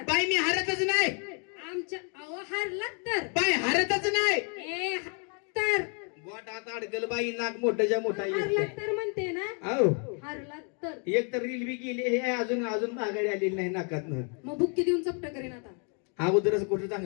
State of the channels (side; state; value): right; quieter; 39.1 dB